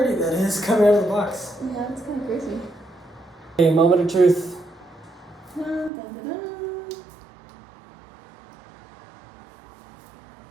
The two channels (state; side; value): drops out; left; at 5.9 s